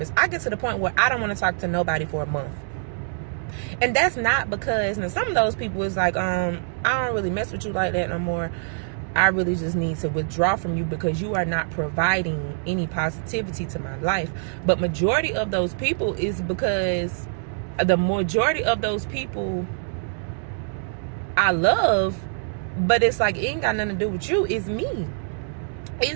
I get to the point where I don't want to talk to nobody for a month. And that's not because, now some of those people is like, I don't really mess with you like that no more. I really just need to withdraw from you because you are not providing any positivity to my life. But majority of those people is because the majority of those people I love, but it's like, it ain't got nothing to do with you. It's me.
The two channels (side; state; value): left; silent; digital silence